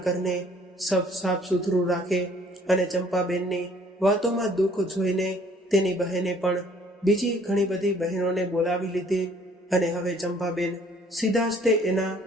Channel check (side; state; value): both; normal; correlation 0.58